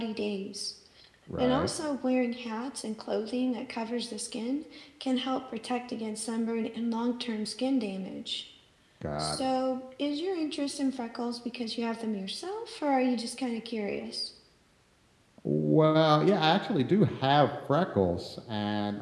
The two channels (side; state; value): both; identical; correlation 1.00